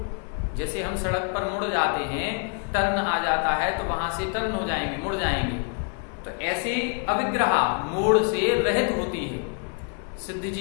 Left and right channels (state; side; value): quieter; right; 38.6 dB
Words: जैसे हम सड़क पर मुड़ जाते हैं, टर्न आ जाता है तो वहां से टर्न हो जाएंगे, मुड़ जाएंगे। तो ऐसे अविग्रहा, मोड़ से रहित होती है। सिद्ध